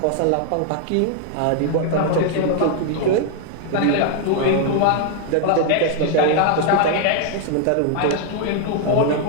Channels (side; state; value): both; different; correlation 0.00